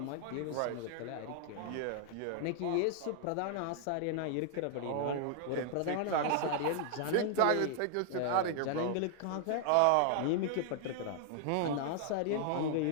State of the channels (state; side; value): different; both; correlation 0.00